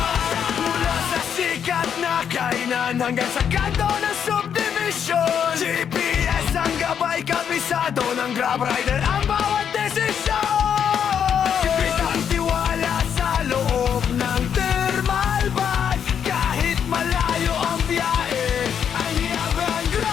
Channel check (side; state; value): right; quieter; 8.1 dB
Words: Mula sa sikat na kainan hanggang sa kanto ng subdivision, GPS ang gabay, kabisado ng Grab rider ang bawat desisyon. Sipit ang tiwala sa loob ng thermal bag. Kahit malayo ang biyahe, ang hiyabang